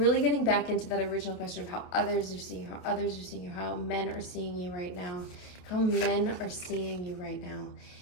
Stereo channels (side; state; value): right; late; 28 ms